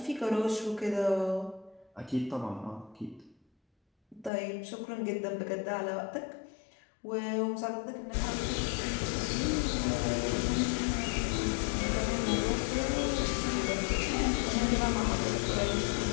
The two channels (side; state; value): right; drops out; at 4.3 s